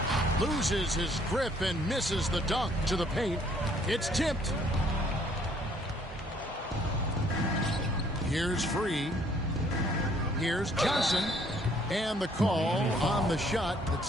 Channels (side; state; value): both; normal; correlation 0.63